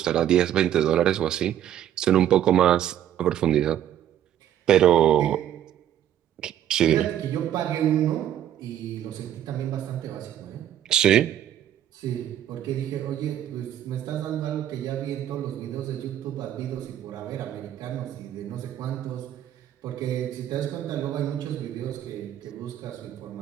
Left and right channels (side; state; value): left; quieter; 11.1 dB